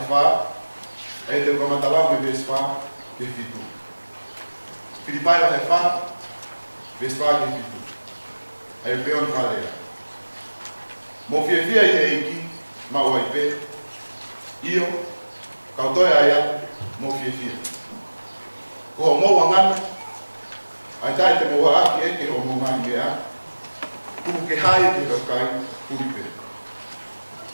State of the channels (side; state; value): both; inverted; correlation -1.00